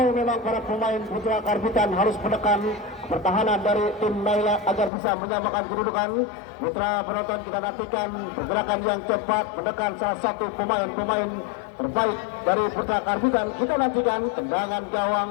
memang para pemain Putra Karbitan harus menekan pertahanan dari tim Naila agar bisa menyamakan kedudukan. Mitra penonton, kita nantikan pergerakan yang cepat menekan salah satu pemain-pemain terbaik dari Putra Karbitan. Kita nantikan tendangan gawang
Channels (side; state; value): right; drops out; at 4.9 s